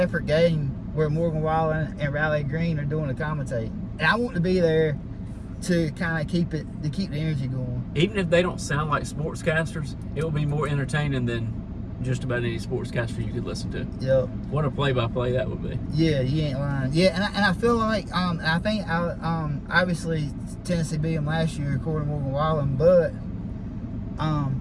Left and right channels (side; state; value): both; identical; correlation 1.00